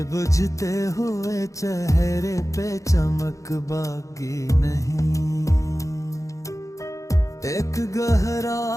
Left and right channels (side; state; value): right; late; 0.15 ms